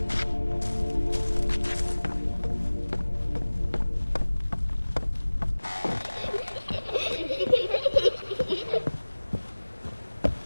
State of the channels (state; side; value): inverted; both; correlation -1.00